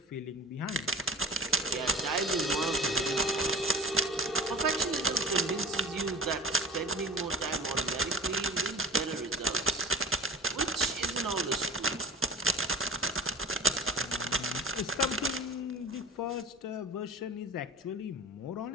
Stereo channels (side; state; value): both; normal; correlation 0.37